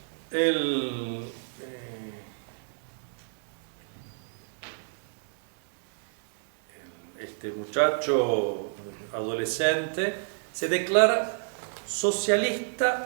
este muchacho adolescente se declara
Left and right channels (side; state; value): left; silent; 58 dB below the other